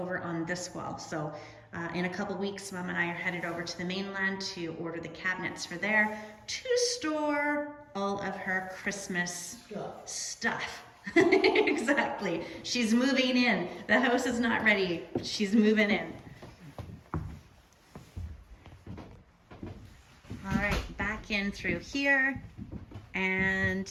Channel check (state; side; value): identical; both; correlation 1.00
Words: on this wall. So in a couple weeks, Mom and I are headed over to the mainland to order the cabinets for there to store all of her Christmas stuff. Exactly. She's moving in. The house is not ready. She's moving in. All right, back in through here. And